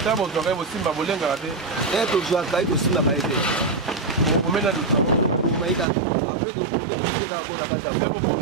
bozwaka ye bosimba bolengaka te tozwaka ye tosimbaka ye te omena omaika apres tokoke tosileka mpo na kati ya mpe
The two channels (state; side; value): drops out; left; at 5.9 s